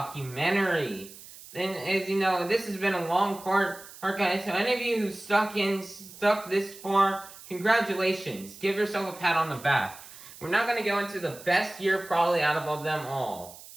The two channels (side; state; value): right; noise; hiss, 18 dB below the sound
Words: And as you know, this has been a long part, guys. So any of you who stuck this far, congratulations. Give yourself a pat on the back. We're now going to go into the best year probably out of them all,